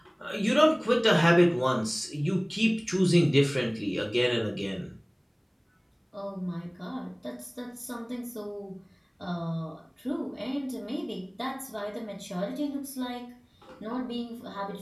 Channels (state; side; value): identical; both; correlation 1.00